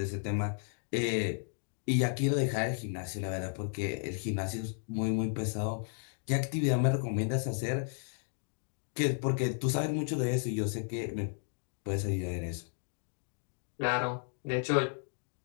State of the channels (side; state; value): right; silent; digital silence